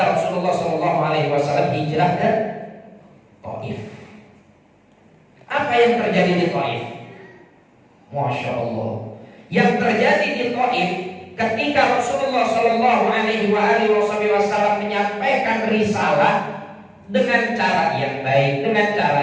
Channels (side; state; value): both; identical; correlation 1.00